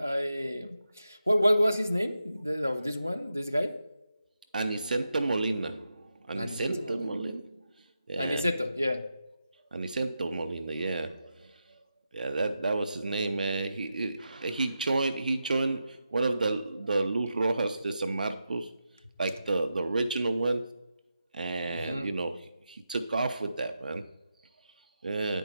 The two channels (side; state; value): both; inverted; correlation -0.88